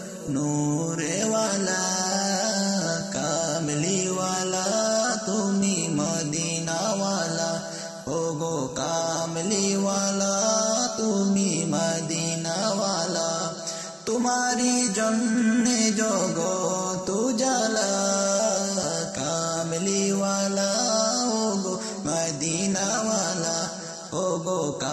নূরেওয়ালা, কামলিওয়ালা তুমি মদিনাওয়ালা, ওগো কামলিওয়ালা তুমি মদিনাওয়ালা। তোমারি জন্যে জগৎ উজালা, কামলিওয়ালা ওগো মদিনাওয়ালা, ওগো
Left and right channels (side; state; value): both; identical; correlation 1.00